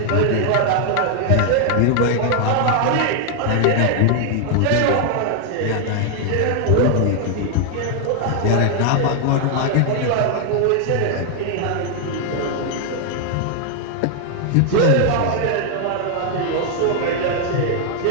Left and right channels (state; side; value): different; both; correlation 0.00